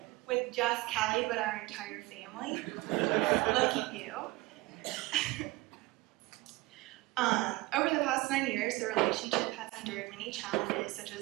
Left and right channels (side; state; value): left; quieter; 20.9 dB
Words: with just Callie, but our entire family. Lucky you. Over the past 9 years, the relationship has endured many challenges, such